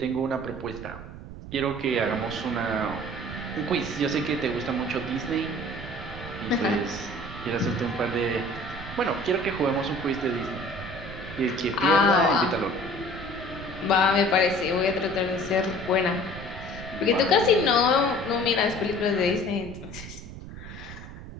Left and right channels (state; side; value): noise; right; rumble, 12 dB below the sound